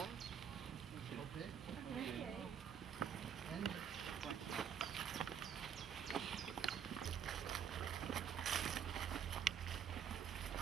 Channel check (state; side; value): quieter; left; 8.1 dB